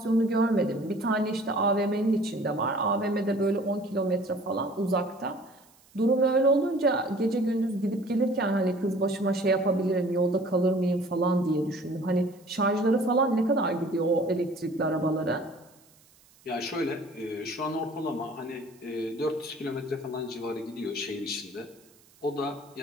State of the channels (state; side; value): noise; right; hiss, 29 dB below the sound